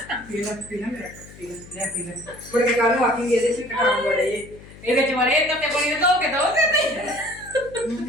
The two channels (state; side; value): noise; left; hum, 19 dB below the sound